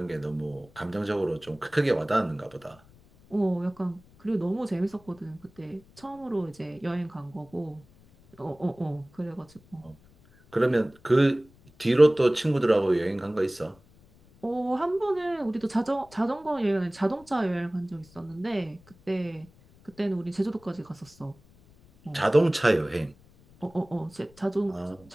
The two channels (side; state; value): left; noise; rumble, 27 dB below the sound